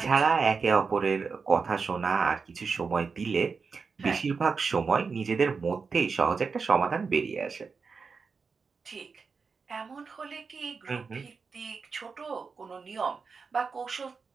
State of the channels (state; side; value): quieter; left; 5.1 dB